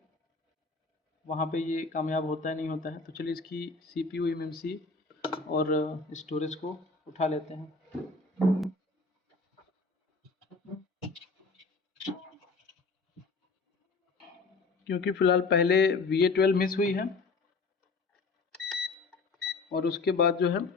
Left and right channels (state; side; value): quieter; right; 4.0 dB